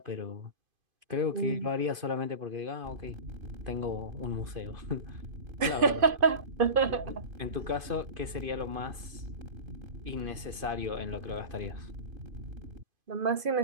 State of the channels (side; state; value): left; late; 2.5 ms